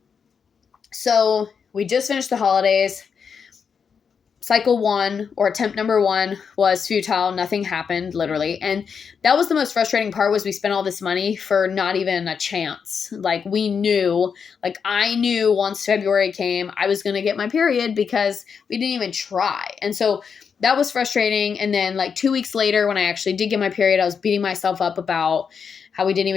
so we just finished the holidays. Cycle 1, or attempt number 1, was futile. Nothing happened, literally. And that was the most frustrating part, was we spent all this money for not even a chance. I knew once February came, I was going to get my period because we didn't even try. And so that was frustrating. And then 2 weeks later, when I actually did get my period, I was beating myself up about how we didn't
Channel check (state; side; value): quieter; right; 6.4 dB